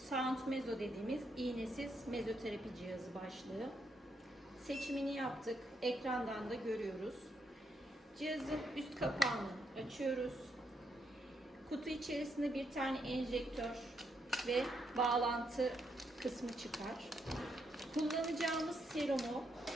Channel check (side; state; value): both; normal; correlation 0.78